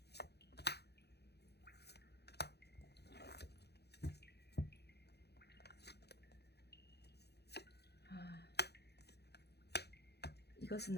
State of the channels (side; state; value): right; late; 0.48 ms